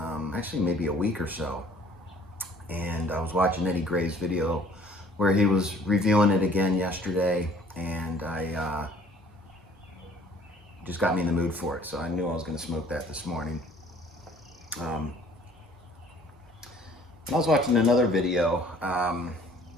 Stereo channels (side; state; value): both; normal; correlation 0.55